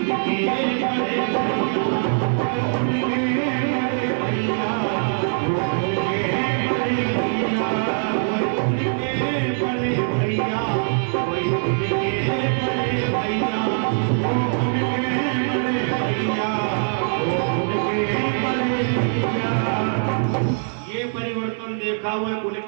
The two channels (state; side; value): silent; left; digital silence